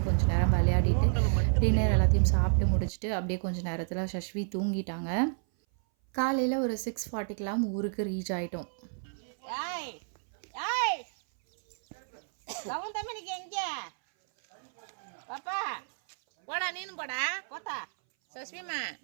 கொஞ்ச நேரம் விளையாடிட்டு, டின்னர் எல்லாத்தையும் சாப்பிட்டு முடிச்சுட்டு, அப்படியே கொஞ்சம் நேரத்தில் சஷ்வி தூங்கிட்டாங்க. காலையில் ஒரு 6:40க்கெலாம் ஊருக்கு ரீச் ஆகிட்டோம். பாப்பா போடா நீனும் போடா போத்தா சஸ்விமா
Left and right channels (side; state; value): left; silent; 58 dB below the other